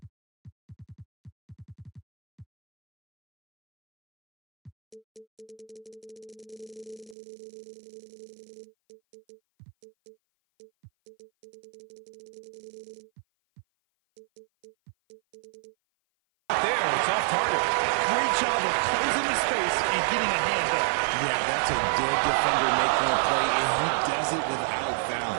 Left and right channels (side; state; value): left; drops out; at 7.2 s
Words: There, it's off target. Great job of closing the space and getting a hand up. Yeah, that's a good defender making a play, and he does it without